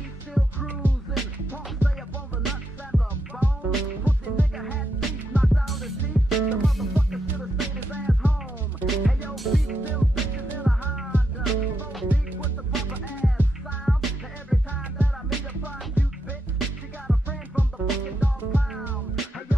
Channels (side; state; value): both; normal; correlation 0.82